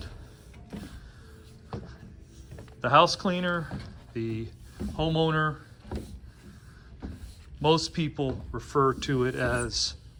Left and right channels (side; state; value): both; identical; correlation 1.00